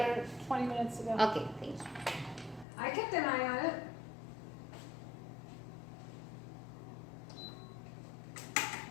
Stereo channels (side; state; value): right; drops out; at 2.7 s